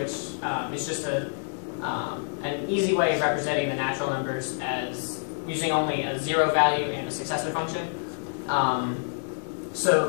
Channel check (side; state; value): right; silent; digital silence